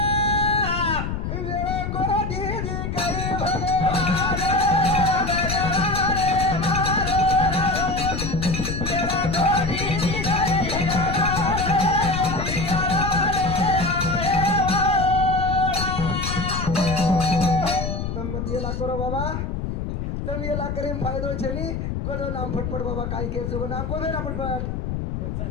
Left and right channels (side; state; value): left; noise; rumble, 3 dB below the sound